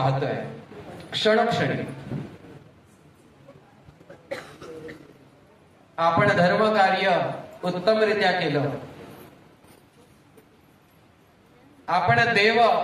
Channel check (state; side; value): identical; both; correlation 1.00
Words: क्षणोक्षणी. आपण धर्म कार्य उत्तमरित्या केलं, आपण देव